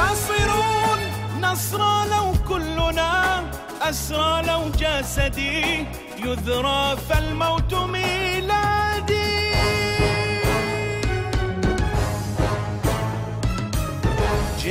نصرى لو كلنا أسرى، لو جسدي يذرى فالموت ميلادي.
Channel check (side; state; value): both; identical; correlation 1.00